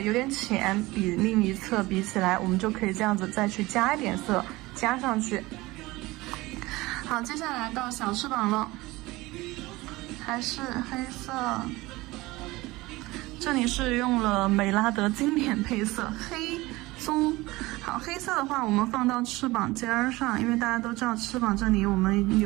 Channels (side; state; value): left; quieter; 20.4 dB